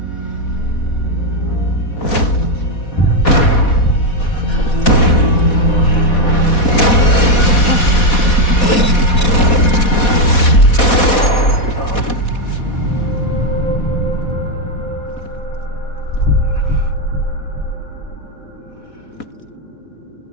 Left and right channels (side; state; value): right; late; 4.1 ms